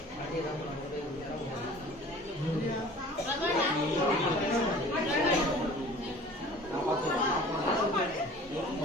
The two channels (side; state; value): both; normal; correlation 0.46